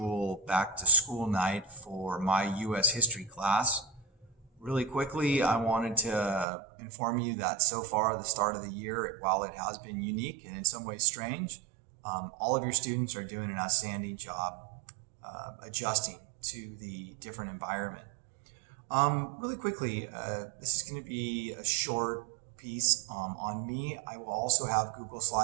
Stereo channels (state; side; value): drops out; left; at 6.5 s